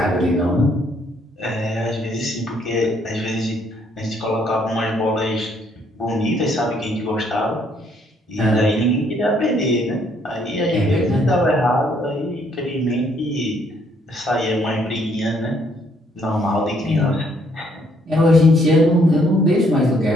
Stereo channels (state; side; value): normal; both; correlation 0.68